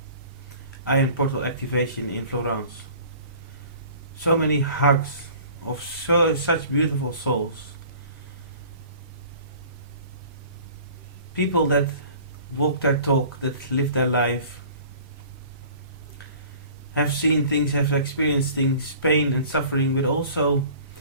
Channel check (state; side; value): inverted; both; correlation -0.47